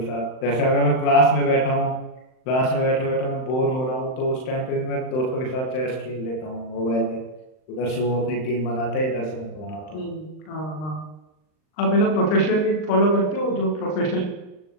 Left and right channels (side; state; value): right; late; 39 ms